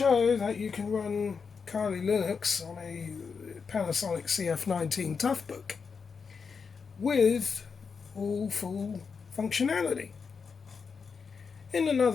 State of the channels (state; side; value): quieter; right; 5.6 dB